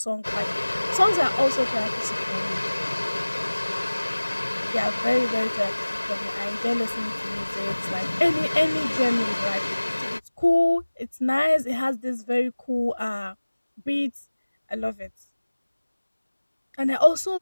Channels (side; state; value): both; inverted; correlation -1.00